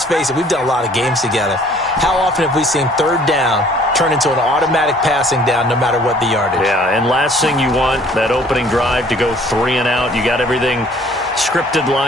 face it, we've done a lot of games together. How often have we seen 3rd down turn into an automatic passing down no matter what the yardage? Yeah, and last thing you want, that opening drive to go 3 and out. You got everything scripted,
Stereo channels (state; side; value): normal; both; correlation 0.56